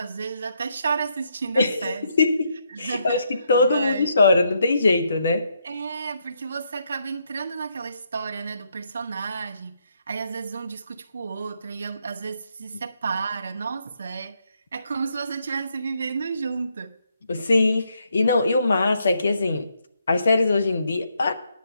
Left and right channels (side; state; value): both; inverted; correlation -0.76